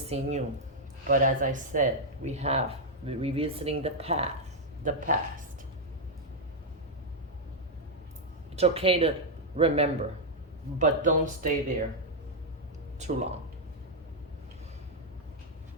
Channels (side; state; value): both; normal; correlation -0.03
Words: you. But as I said, we're revisiting the past. It's okay to remember, but don't stay there too long.